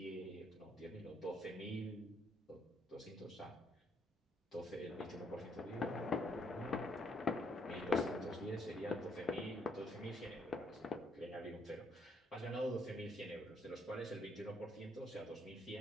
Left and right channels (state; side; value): normal; both; correlation 0.71